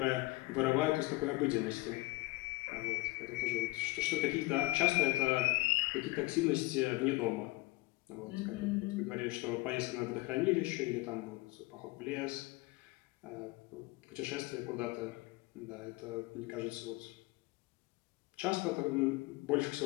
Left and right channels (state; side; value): quieter; right; 21.4 dB